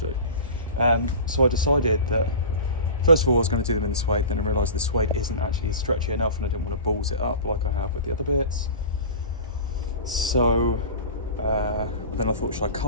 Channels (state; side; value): inverted; both; correlation -0.33